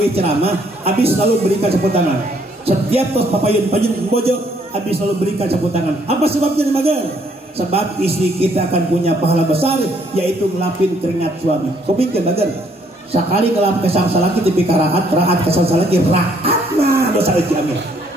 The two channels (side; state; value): both; normal; correlation 0.67